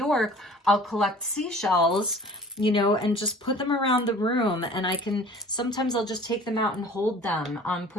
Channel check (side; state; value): both; normal; correlation 0.47